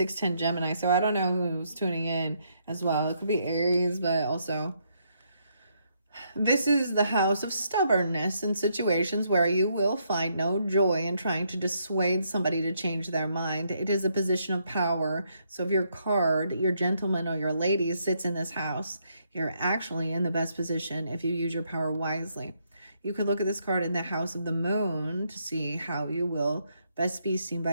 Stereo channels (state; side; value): inverted; both; correlation -0.75